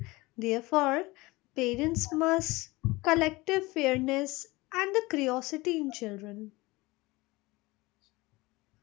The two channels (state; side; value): quieter; right; 21.8 dB